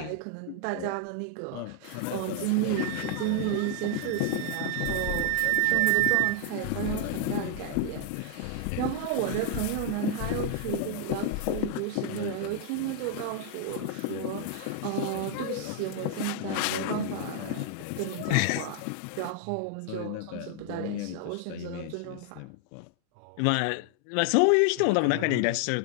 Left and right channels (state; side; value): different; both; correlation 0.00